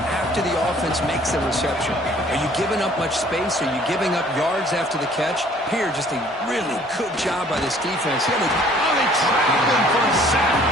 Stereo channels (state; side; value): normal; both; correlation 0.56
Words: after the offense makes a reception? Are you giving up much space? Are you giving up yards after the catch? Here, just a really good job by this defense. They trap him for a sack.